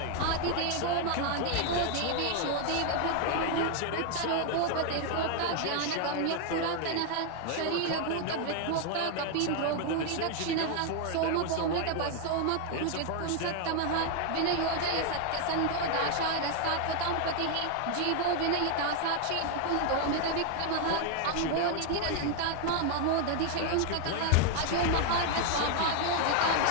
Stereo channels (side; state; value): both; different; correlation 0.00